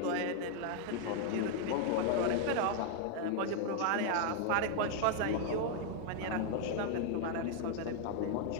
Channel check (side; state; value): both; different; correlation 0.00